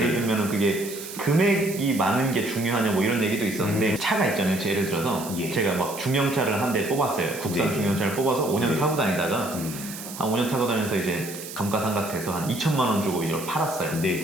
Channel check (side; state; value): right; noise; hiss, 11 dB below the sound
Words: 들면은 그게 금액이 많은 게 중요하냐 뭐 이런 얘기도 있었는데 차가 있잖아요. 예를 들어서 예. 제가 막 중형차를 한 대 뽑았어요. 국산 네. 중형차를 뽑아서 5년 네. 타고 다니다가 한 5년 타고 다니면서 이제 감가상각돼서 한 2천만 원 주고 이걸 팔았어요.